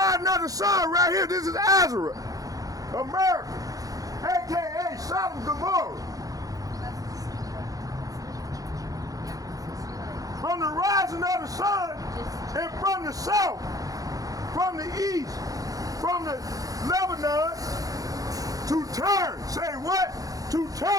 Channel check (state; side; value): late; left; 0.17 ms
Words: of the sun right here. This is Esdras, America, aka Sodom and Gomorrah. From the rising of the sun and from the south, from the east, from the Lebanon, to turn. Say what? To